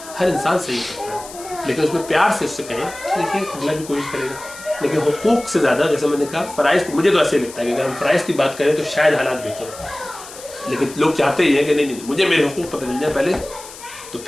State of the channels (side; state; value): left; noise; hiss, 16 dB below the sound